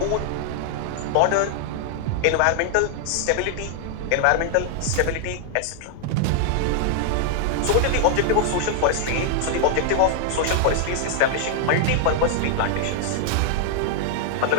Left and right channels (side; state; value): both; different; correlation -0.01